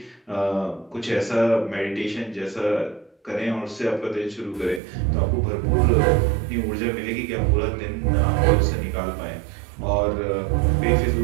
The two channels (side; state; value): left; drops out; at 4.8 s